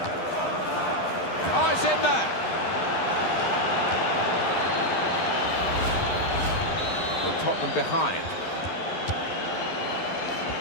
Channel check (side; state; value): right; late; 11 ms